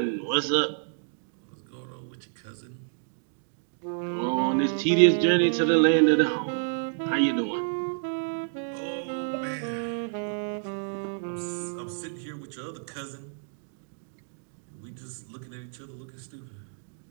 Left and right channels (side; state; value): left; silent; digital silence